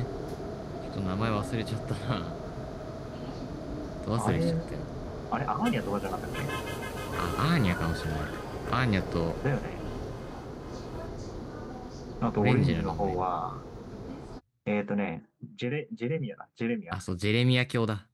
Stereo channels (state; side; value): identical; both; correlation 1.00